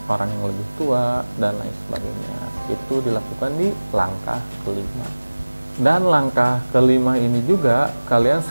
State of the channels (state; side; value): inverted; both; correlation -1.00